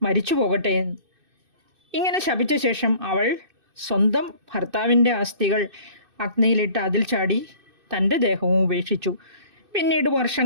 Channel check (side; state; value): left; late; 2.6 ms